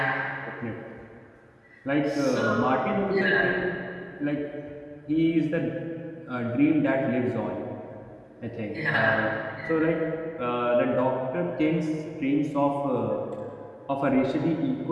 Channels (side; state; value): both; identical; correlation 1.00